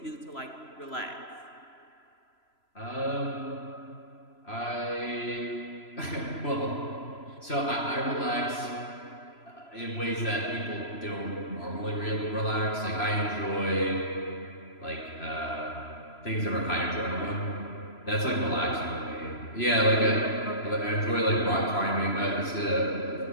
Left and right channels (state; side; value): late; right; 3.0 ms